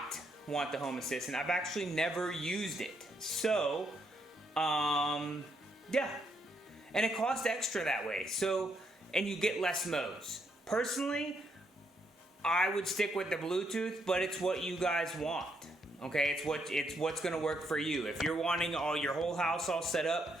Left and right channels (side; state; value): both; normal; correlation 0.76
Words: want the home assistant. I've actually never used it. So, yeah. And it costs extra that way. So, and you get less modes. Personally, I would stick with the Bluetooth, but it's what you guys want. Okay, it's what's gonna work for you. If you're wanting your whole house all set up